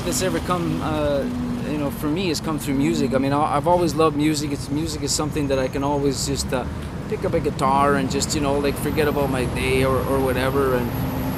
that's ever come, for me has come through music. I mean, I've always loved music. Music is something that I can always just pick up a guitar and just forget about my day or whatever,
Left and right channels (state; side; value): identical; both; correlation 1.00